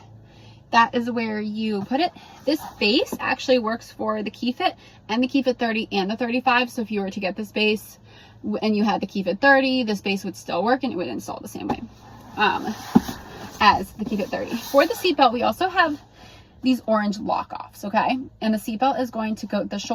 That is where you put it. This base actually works for the Keyfit and the Keyfit 30 and the 35. So if you were to get this base and you had the Keyfit 30, this base would still work and it would install the same way as the Keyfit 30. For the seatbelt, we also have these orange lock-offs, okay? And the seatbelt is going to go, the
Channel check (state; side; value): identical; both; correlation 1.00